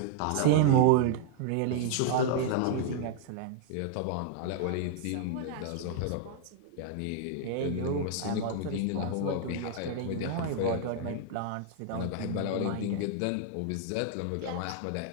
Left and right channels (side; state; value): both; different; correlation -0.01